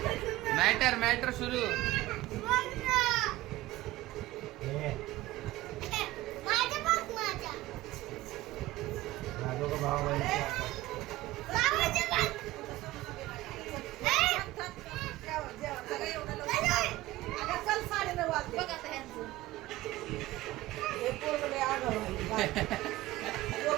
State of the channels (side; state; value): left; quieter; 17.3 dB